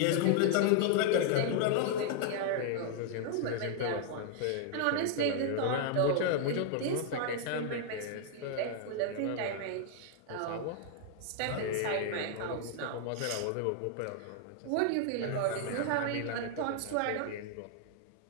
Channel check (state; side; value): different; both; correlation 0.00